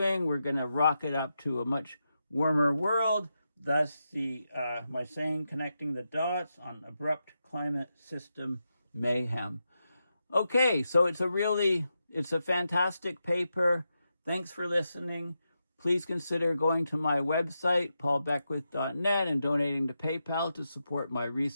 we're going to rocket up to a much warmer world. Thus the my saying, connecting the dots on abrupt climate system mayhem. Okay, so it's a fantastic paper. Thanks for listening. Please consider going to my website, paulbeckwith.net, and donating to PayPal to support my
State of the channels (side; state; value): both; inverted; correlation -0.87